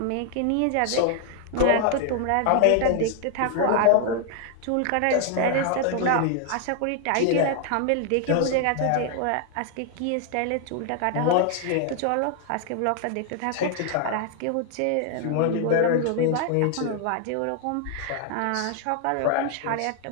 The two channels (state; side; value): different; both; correlation 0.00